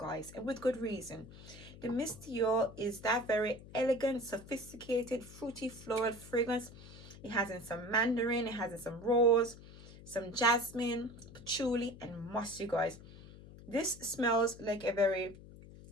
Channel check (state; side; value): noise; left; hum, 17 dB below the sound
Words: and with good reason. The Miss Dior is that very elegant, sophisticated, fruity, floral fragrance. It has in some mandarin, it has in some rose, some jasmine, patchouli, and musk, you guys. This smells like a very